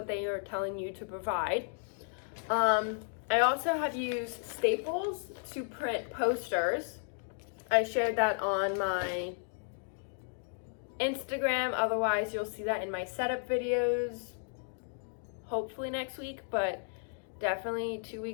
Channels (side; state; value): right; silent; digital silence